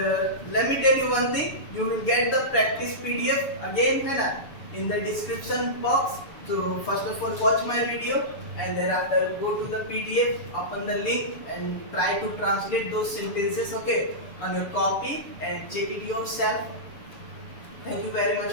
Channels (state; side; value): late; right; 6.9 ms